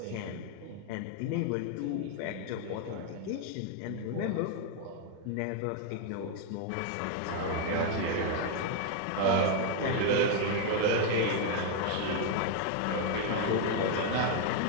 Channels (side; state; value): both; different; correlation 0.00